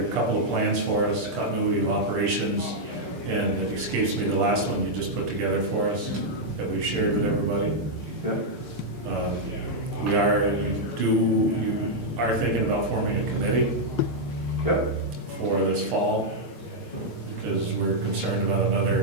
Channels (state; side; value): late; left; 6.7 ms